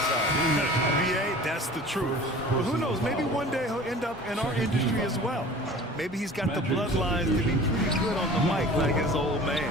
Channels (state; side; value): normal; both; correlation 0.42